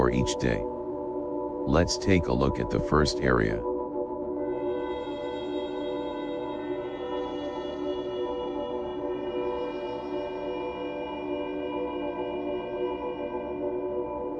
each day. Let's take a look at the first area.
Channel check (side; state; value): both; identical; correlation 1.00